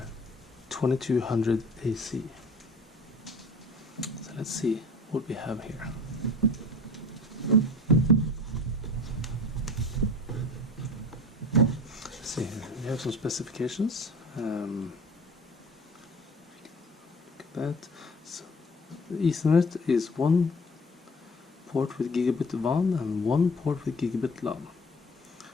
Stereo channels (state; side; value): normal; both; correlation 0.43